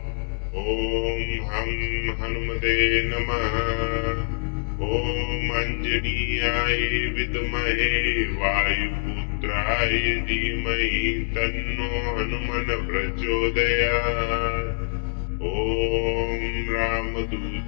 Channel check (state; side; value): silent; right; 62 dB below the other